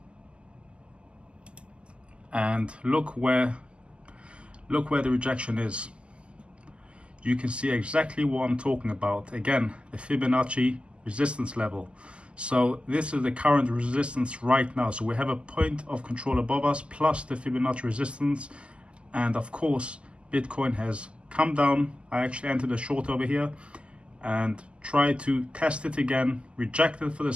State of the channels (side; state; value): left; late; 0.053 ms